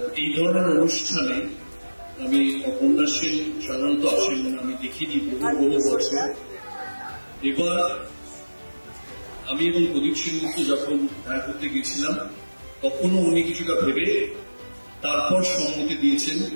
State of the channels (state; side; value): inverted; both; correlation -1.00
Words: এই ধরনের অনুষ্ঠানে আমি উপন্যাসের সাধারণত আসেন আমি দেখিনি বহু বছর। এবার আমি এবং প্রদীপ সেনগুপ্ত যখন দেখা করতে গেছিলাম তখনও উনি কিছুটা ভেবে তারপর সম্মতি দিয়েছেন।